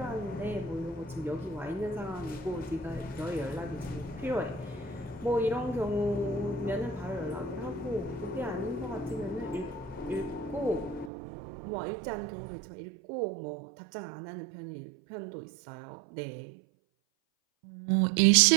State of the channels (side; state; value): left; drops out; at 11.1 s